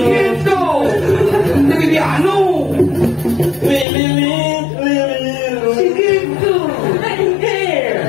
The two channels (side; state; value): right; drops out; at 3.9 s